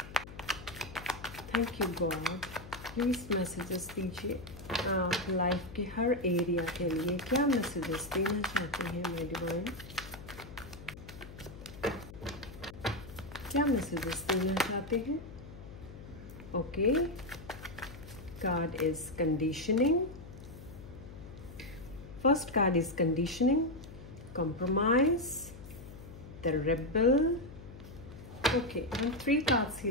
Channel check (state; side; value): noise; left; hum, 15 dB below the sound